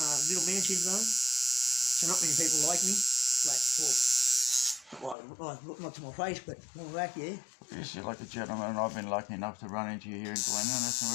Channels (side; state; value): right; drops out; at 5.2 s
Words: little man syndrome. So not many people like me. Not to my face, but more like, yeah. Yes, you're like a gentleman, and I've been lucky enough to run into you here in Glen Innes, and